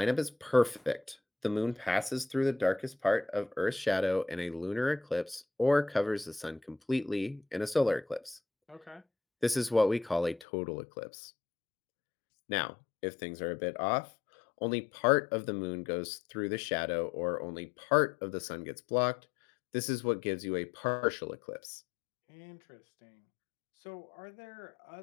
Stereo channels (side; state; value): right; drops out; at 10.5 s